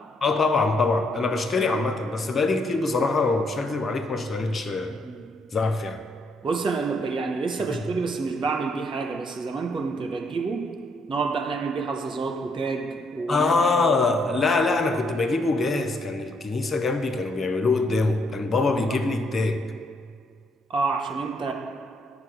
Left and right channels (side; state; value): both; normal; correlation 0.72